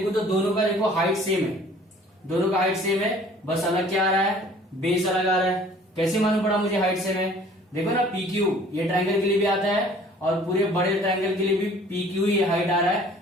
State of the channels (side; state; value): both; normal; correlation 0.52